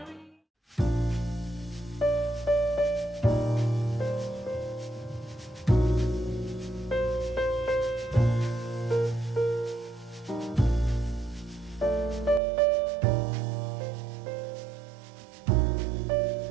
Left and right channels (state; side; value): drops out; left; at 12.4 s